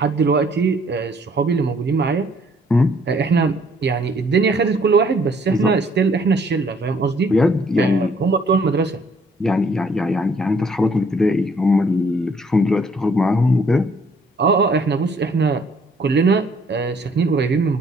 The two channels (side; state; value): both; normal; correlation 0.62